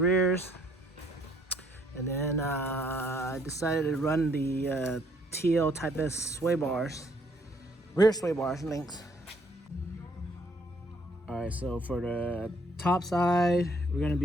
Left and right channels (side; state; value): both; normal; correlation 0.66